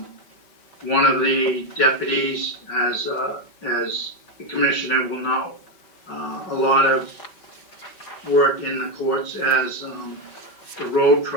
of the deputies, as the commissioner will know, a lot of work in the courts as the road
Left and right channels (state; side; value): late; right; 5.1 ms